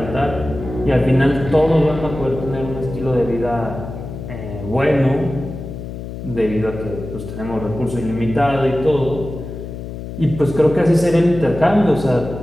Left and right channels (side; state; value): left; noise; hum, 9 dB below the sound